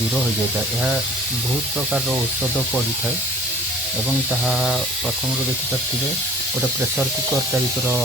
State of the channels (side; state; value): both; normal; correlation 0.47